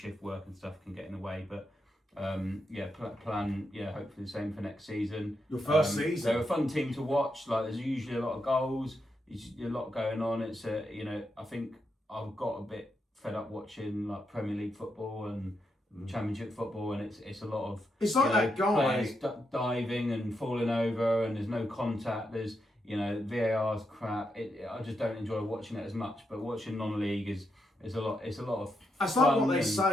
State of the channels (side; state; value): both; normal; correlation 0.83